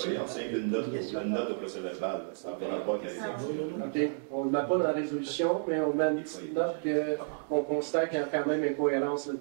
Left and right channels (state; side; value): silent; left; digital silence